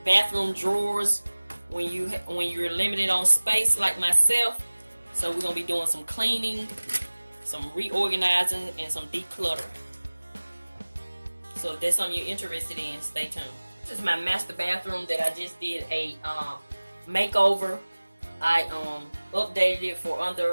bathroom drawers when you're limited on space like myself. So we're going to be doing some cleaning, some reorganizing, and some decluttering. So if that's something you're interested in, stay tuned. This is my master bathroom that I just did a makeover. I updated it for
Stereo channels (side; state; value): both; inverted; correlation -1.00